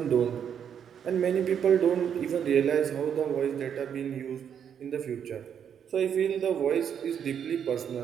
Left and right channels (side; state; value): left; quieter; 8.2 dB